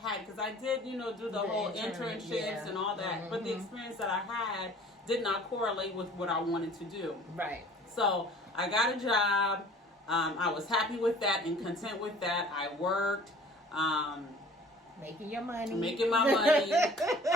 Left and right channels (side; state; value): both; normal; correlation 0.50